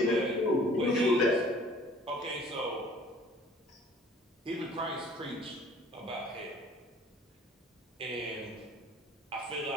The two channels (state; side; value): normal; both; correlation 0.53